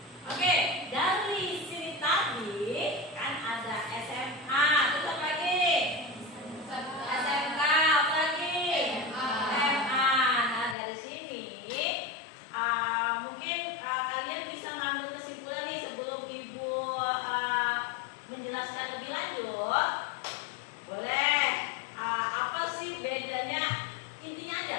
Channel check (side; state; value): right; drops out; at 10.8 s